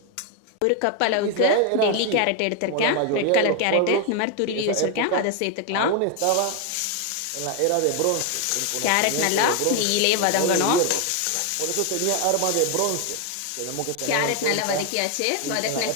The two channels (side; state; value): both; different; correlation 0.01